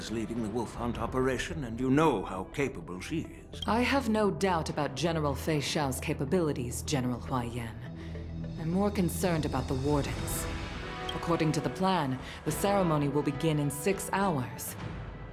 leading the wolf hunt operation, and you know how capable she is. I have no doubt about General Fei Shao's capabilities, General Hua Yan. I'm more concerned about the wardens. According to the plan, the ceremony will begin in 6 hours.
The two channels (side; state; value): both; identical; correlation 1.00